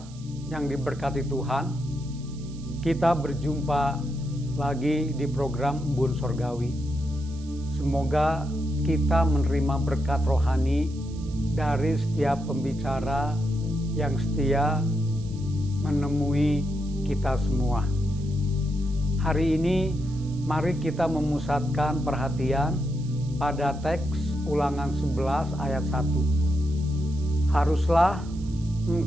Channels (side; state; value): right; noise; hiss, 23 dB below the sound